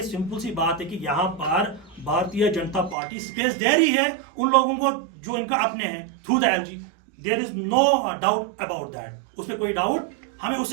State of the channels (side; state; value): left; drops out; at 3.0 s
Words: सिंपल सी बात है कि यहाँ पर भारतीय जनता पार्टी स्पेस दे रही है उन लोगों को जो इनका अपने हैं through the LG. There is no doubt about that, उसमें कोई डाउट, हमें